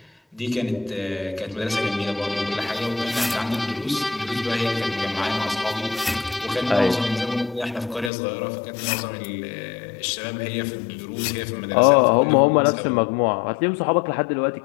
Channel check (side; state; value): right; drops out; at 8.1 s